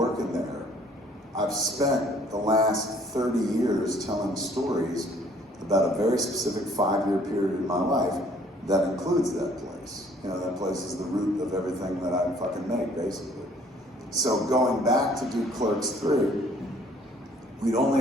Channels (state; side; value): normal; both; correlation 0.59